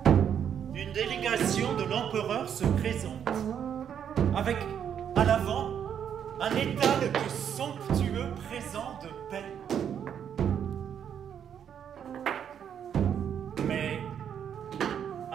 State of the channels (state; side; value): quieter; left; 8.6 dB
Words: Une délégation de l'empereur se présente, avec à l'avant un étal de somptueux présents de paix. Mais